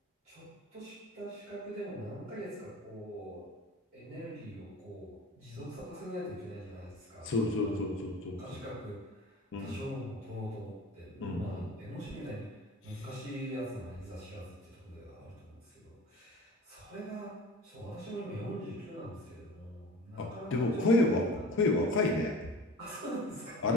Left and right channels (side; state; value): both; normal; correlation 0.39